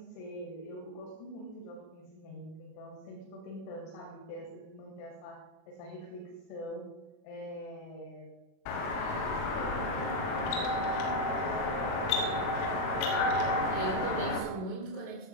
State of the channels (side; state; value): right; late; 36 ms